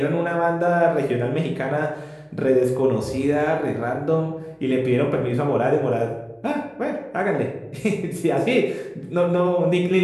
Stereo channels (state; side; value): identical; both; correlation 1.00